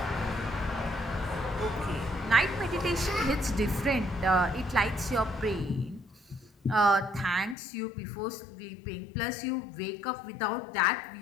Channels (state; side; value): drops out; right; at 7.6 s